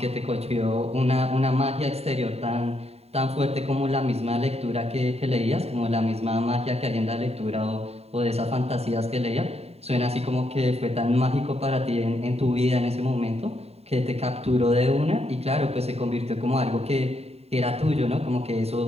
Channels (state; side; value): late; left; 0.30 ms